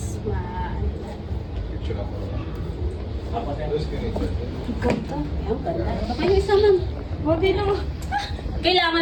Ganda. Ayun, ganda. Baka yung isa ma'am. Wagi na mo.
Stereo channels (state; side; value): identical; both; correlation 1.00